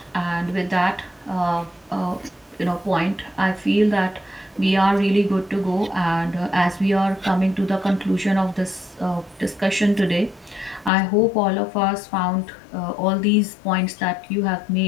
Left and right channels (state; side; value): drops out; right; at 10.9 s